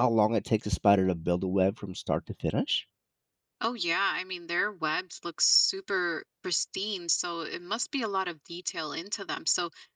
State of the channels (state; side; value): identical; both; correlation 1.00